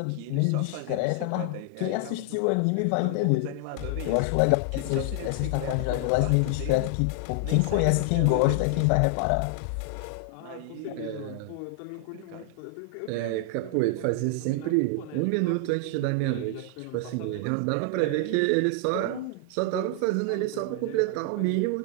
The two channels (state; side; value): different; both; correlation 0.00